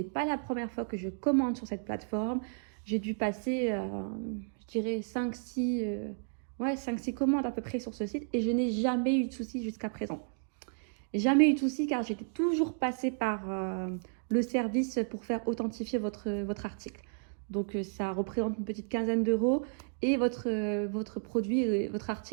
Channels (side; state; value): left; silent; digital silence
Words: pas la première fois que je commande sur cette plateforme. J'ai dû passer, je dirais 5-6 commandes à peu près sur ce site et je n'ai jamais eu de soucis jusqu'à présent. Jamais eu de soucis car j'étais toujours passée par le service pour faire authentifier votre article. Donc ça représente une petite quinzaine d'euros et votre produit, votre